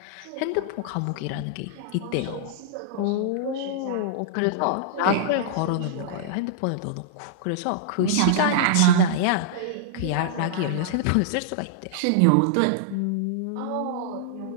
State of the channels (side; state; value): both; different; correlation -0.01